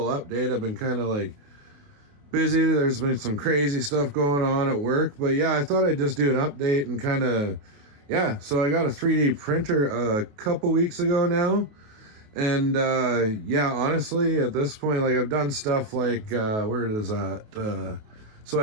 update. I've been kind of like busy. There's been some crazy stuff going on at work, but yeah, I thought I'd just do an update and kind of, yeah. So I got a 3D printer a couple weeks ago now, and yeah, honestly, at this point, like I've done stuff like where is that? So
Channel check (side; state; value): left; late; 28 ms